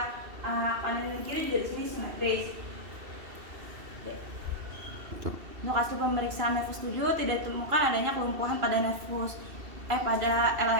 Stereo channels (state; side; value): late; left; 2.7 ms